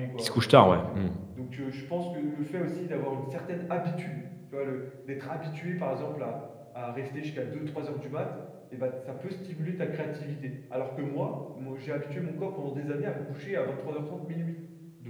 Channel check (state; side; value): identical; both; correlation 1.00